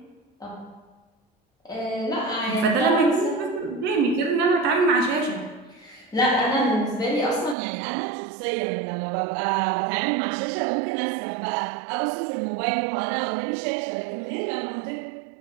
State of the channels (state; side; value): drops out; left; at 7.6 s